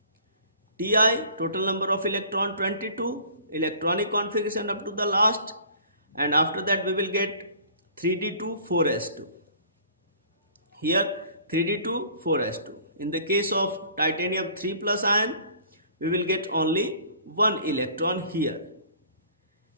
Ti, total number of electron 22, electronic configuration up to the last, and after that we will get 3d2 4s2. Here 3d2 4s2. In the case of titanium 3 plus ion, we will get only one electron here,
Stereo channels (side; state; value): both; inverted; correlation -0.50